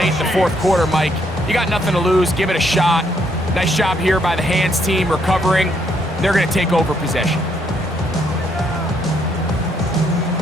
in the fourth quarter, Mike. You got nothing to lose. Give it a shot. Nice job here by the hands team recovering. They're going to take over possession.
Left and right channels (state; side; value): normal; both; correlation 0.72